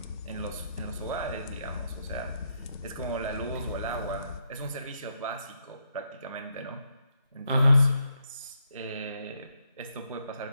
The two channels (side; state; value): both; inverted; correlation -0.77